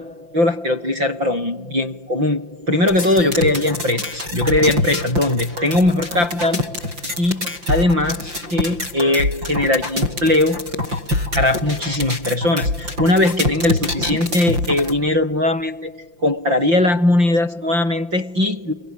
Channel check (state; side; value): late; left; 5.8 ms